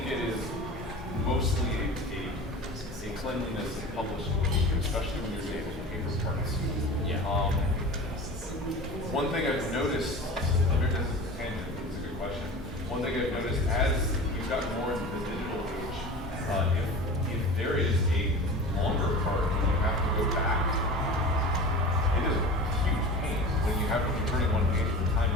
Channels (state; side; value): normal; both; correlation 0.35